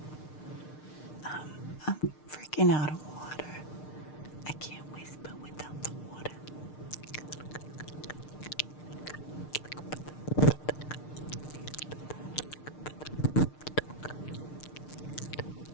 I'm freaking out of water. I can't whisper without the water.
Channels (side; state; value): right; late; 6.6 ms